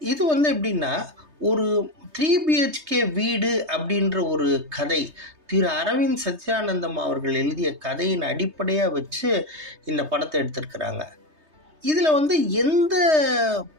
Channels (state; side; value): late; left; 3.2 ms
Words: இது எப்படின்னா, ஒரு 3 பிஹெச்கே வீடு அப்படின்ற ஒரு கதை திரு அரவிந்த் சத்யானந்தம் அவர்கள் எழுதிய கதையின் அடிப்படையாக வச்சு இந்த படத்தை எடுத்திருக்கிறாங்க. இதில் எந்த